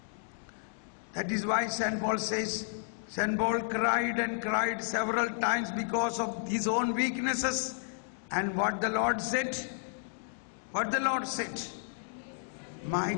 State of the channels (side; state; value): right; silent; digital silence